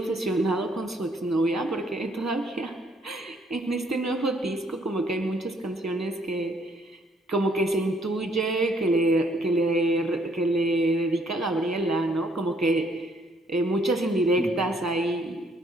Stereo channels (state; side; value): normal; both; correlation 0.67